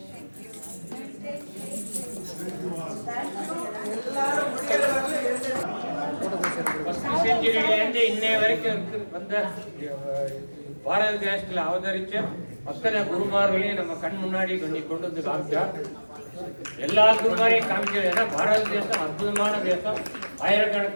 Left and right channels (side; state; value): both; inverted; correlation -1.00